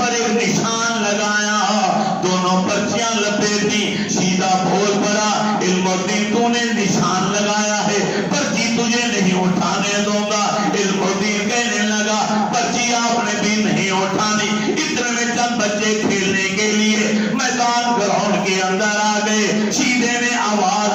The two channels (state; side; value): identical; both; correlation 1.00